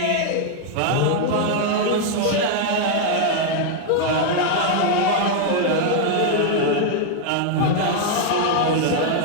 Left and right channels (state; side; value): different; both; correlation 0.00